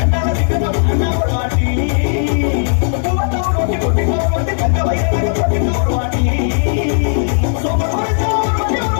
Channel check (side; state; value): right; silent; 69 dB below the other